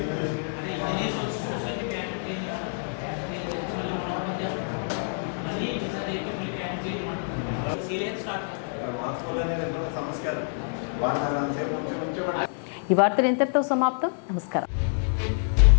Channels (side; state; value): right; silent; digital silence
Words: ఈ వార్తలు ఇంతటితో సమాప్తం. నమస్కారం.